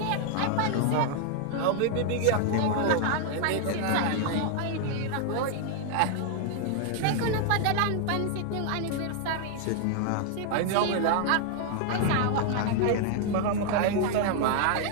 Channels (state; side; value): different; both; correlation 0.00